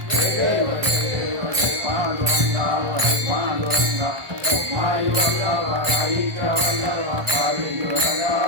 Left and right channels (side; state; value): left; late; 1.2 ms